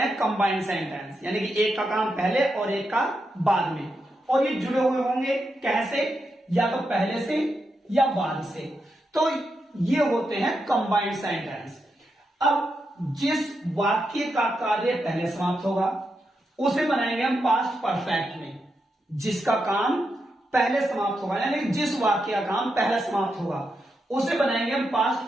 कंबाइंड सेंटेंस, यानी कि एक का काम पहले और एक का बाद में, और ये जुड़े हुए होंगे कैसे? या तो पहले से या बाद से। तो ये होते हैं कंबाइंड सेंटेंस। अब जिस वाक्य का कार्य पहले समाप्त होगा उसे बनाएंगे हम पास्ट परफेक्ट में। जिसका काम पहले समाप्त होगा, यानी जिस वाक्य का काम पहले समाप्त होगा उसे बनाएंगे हम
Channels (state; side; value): normal; both; correlation 0.85